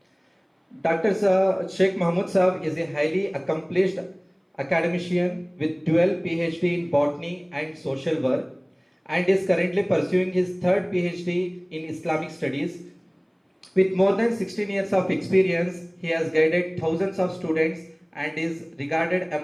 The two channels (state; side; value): identical; both; correlation 1.00